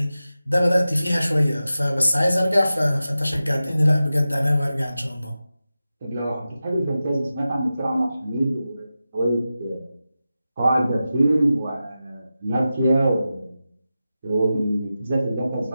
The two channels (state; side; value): inverted; both; correlation -0.93